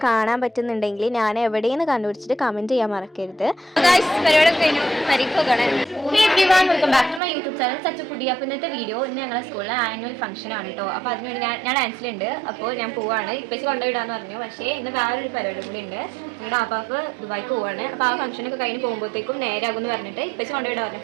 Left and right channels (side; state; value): left; drops out; at 7.2 s